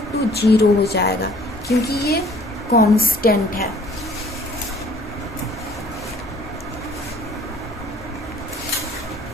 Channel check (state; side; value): normal; both; correlation 0.56